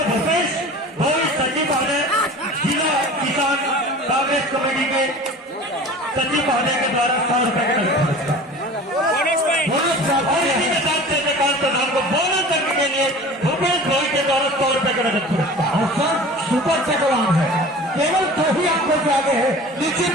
कांग्रेस कमेटी के सचिव महोदय के द्वारा 100 रुपए का नगद पुरस्कार। और इसी के साथ चंद्रकांत प्रधान को बोनस करने के लिए भूपेश भाई के द्वारा 100 रुपए का नगद पुरस्कार। और सर सुपर टेकवान है, केवल 2 ही आंखों से आगे है। निश्चित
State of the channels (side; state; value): both; normal; correlation 0.40